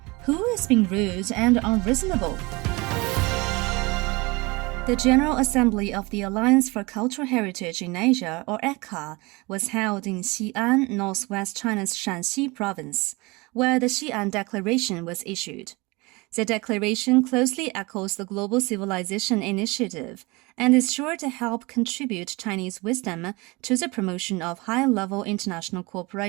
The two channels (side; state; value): left; quieter; 24.7 dB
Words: Who is being rude and unreasonable? The General Assembly of the Alliance for Cultural Heritage in Asia, or ECCA, was held in Xi'an, northwest China's Shanxi province, where the Xi'an Declaration was issued. The declaration closely echoes the Global Civilization Initiative and is sure to help contribute Chinese wisdom to the promotion of high-level international